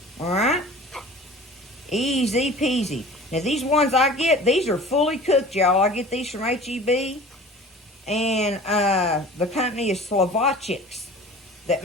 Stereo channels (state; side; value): normal; both; correlation 0.42